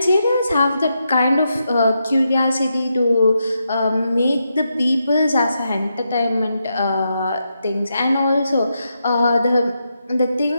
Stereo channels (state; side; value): inverted; both; correlation -0.84